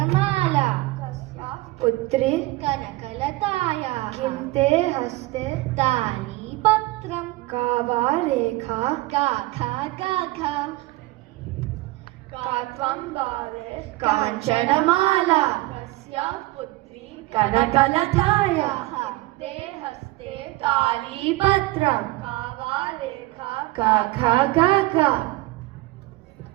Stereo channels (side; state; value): left; quieter; 19.9 dB